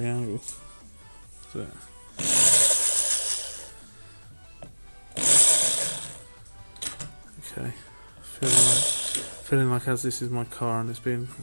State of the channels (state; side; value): inverted; both; correlation -1.00